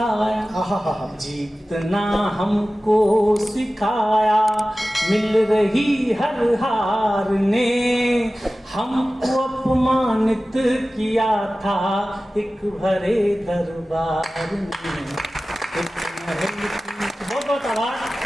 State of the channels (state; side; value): normal; both; correlation 0.96